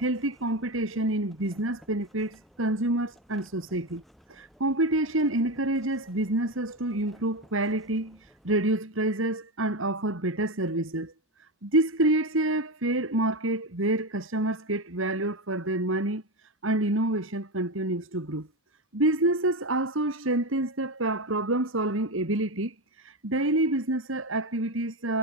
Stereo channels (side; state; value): both; normal; correlation 0.16